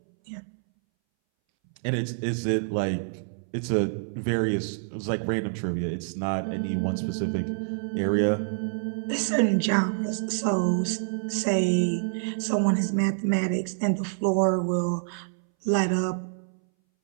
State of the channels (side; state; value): left; silent; 60 dB below the other